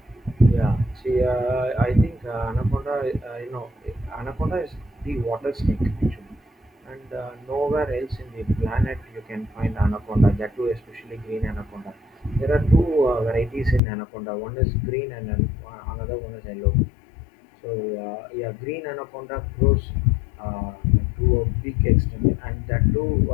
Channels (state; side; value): drops out; right; at 13.8 s